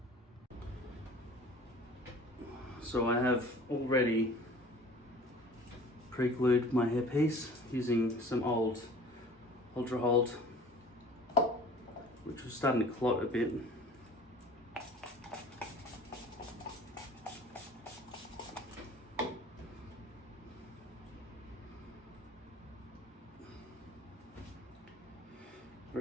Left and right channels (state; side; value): normal; both; correlation 0.46